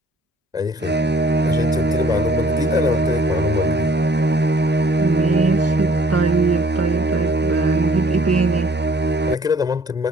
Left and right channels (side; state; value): both; normal; correlation 0.58